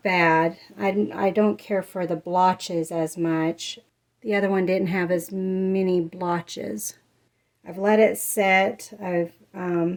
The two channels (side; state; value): both; identical; correlation 1.00